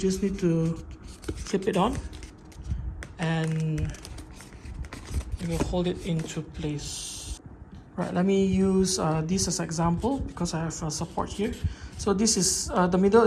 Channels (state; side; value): identical; both; correlation 1.00